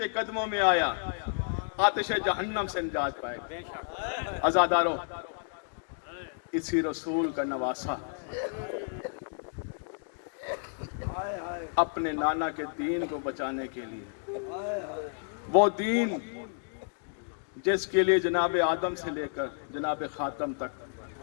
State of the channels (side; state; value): right; silent; digital silence